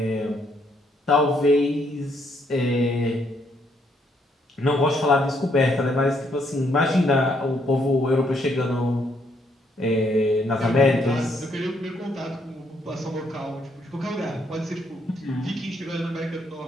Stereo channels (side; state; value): both; normal; correlation 0.72